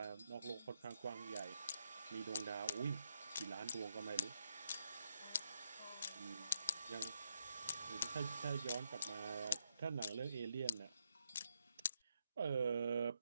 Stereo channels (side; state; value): both; inverted; correlation -0.77